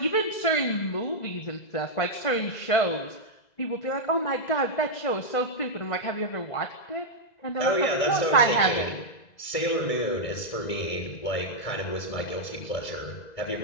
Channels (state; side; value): late; right; 2.0 ms